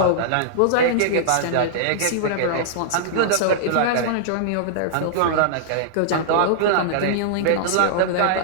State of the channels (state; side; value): different; both; correlation -0.01